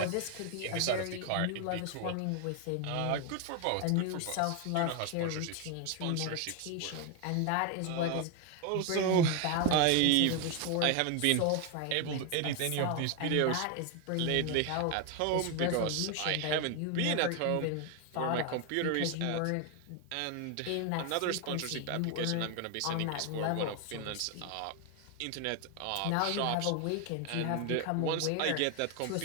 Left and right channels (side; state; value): both; different; correlation 0.01